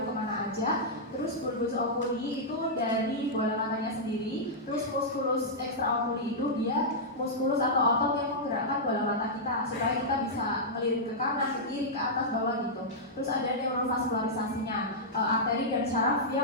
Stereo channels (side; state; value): both; normal; correlation -0.09